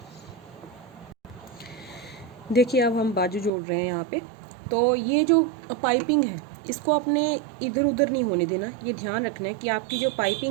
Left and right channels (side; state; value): left; drops out; at 3.5 s